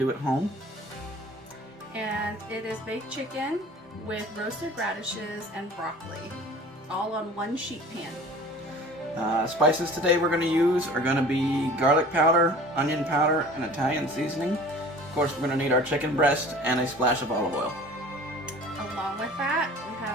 at home. And it is baked chicken with roasted radishes and broccoli, all on one sheet pan. Spices today we're going to use are going to be garlic powder, onion powder, and Italian seasoning. Of course, we're going to need our chicken breast and a splash of olive oil. Along with that, we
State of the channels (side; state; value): both; normal; correlation 0.44